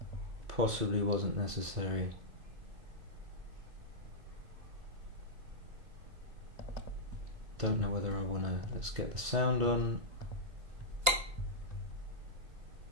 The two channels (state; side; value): late; left; 2.6 ms